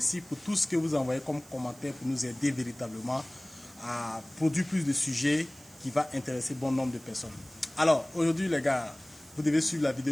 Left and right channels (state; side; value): noise; right; hiss, 23 dB below the sound